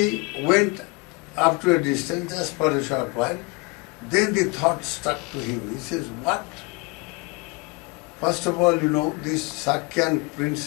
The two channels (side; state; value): right; quieter; 28.4 dB